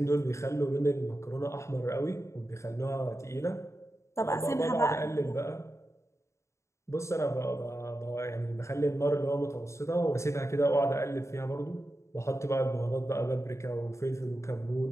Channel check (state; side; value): late; right; 0.14 ms